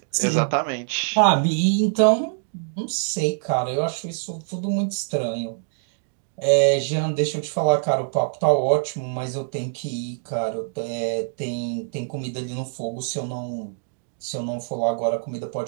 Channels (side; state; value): left; silent; digital silence